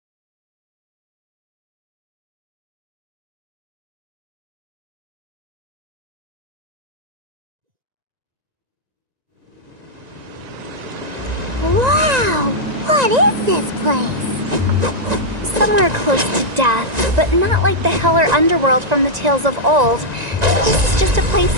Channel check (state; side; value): late; left; 1.9 ms